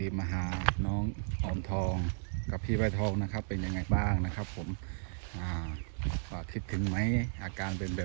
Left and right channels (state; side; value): silent; left; 55 dB below the other